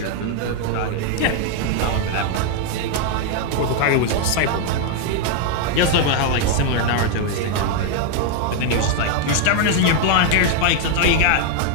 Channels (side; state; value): both; different; correlation 0.00